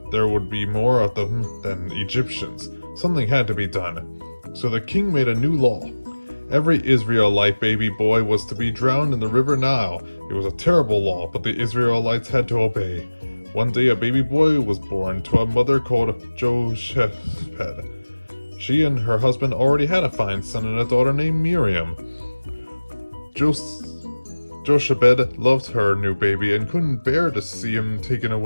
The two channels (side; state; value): both; inverted; correlation -1.00